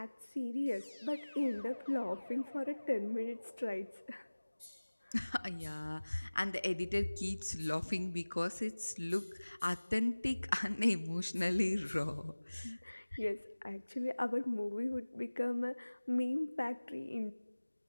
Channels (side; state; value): both; inverted; correlation -1.00